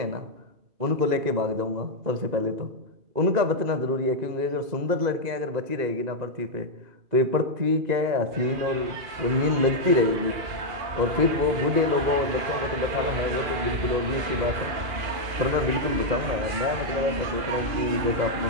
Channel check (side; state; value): left; late; 2.5 ms